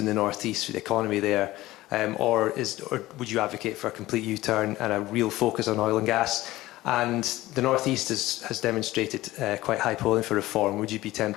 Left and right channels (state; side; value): quieter; right; 17.2 dB